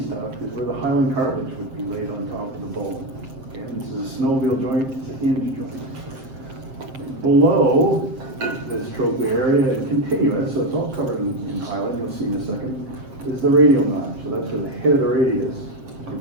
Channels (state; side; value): late; left; 7.6 ms